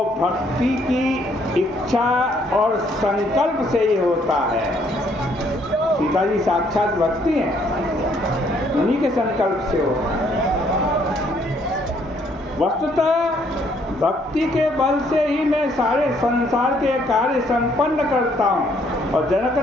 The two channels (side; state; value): both; normal; correlation 0.67